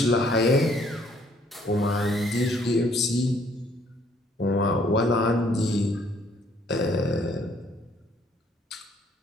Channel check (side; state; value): both; normal; correlation 0.63